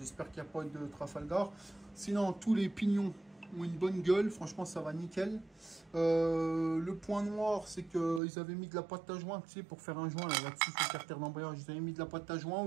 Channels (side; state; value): left; drops out; at 8.2 s